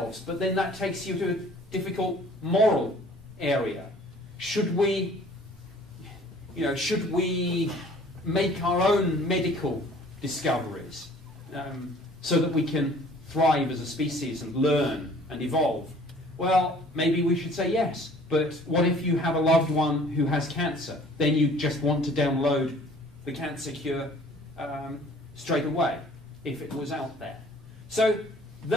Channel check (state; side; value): normal; both; correlation 0.53